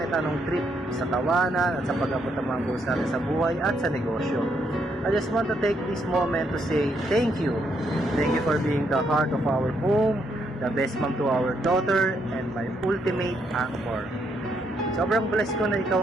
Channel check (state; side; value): normal; both; correlation 0.75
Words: anong trip, sa tawanan at sa pag-abot ng mga goals natin sa buhay at sa negosyo. I just want to take this moment to say thank you. Thank you for being the heart of our home, the best mom to our daughter, and my ultimate anchor. Sobrang blessed ko na